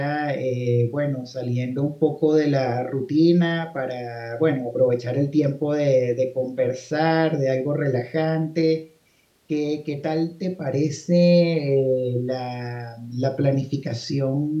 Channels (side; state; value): both; identical; correlation 1.00